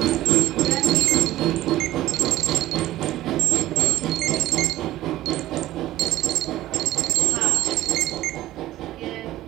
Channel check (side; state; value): left; quieter; 15.2 dB